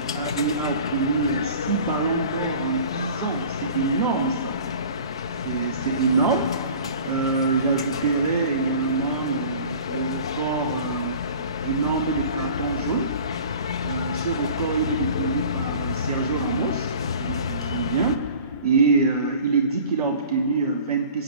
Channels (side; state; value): both; inverted; correlation -0.44